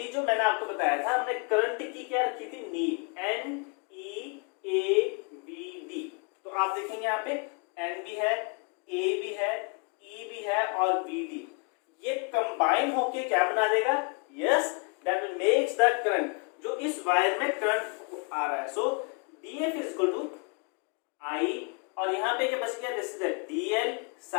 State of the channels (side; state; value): right; quieter; 34.6 dB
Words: जो मैंने आपको बताया था, हमने करंट की क्या रखी थी, नीड, NEAVD। तो आप देखेंगे यहाँ पे N भी है, A भी है, E भी है और VD, ये कंबाइन होके क्या बना देगा, yes, that makes the current, जो इस वायर में करंट आ रहा है। So DF is equal to I, और यहाँ पे क्या बच गया, दिस इज DL,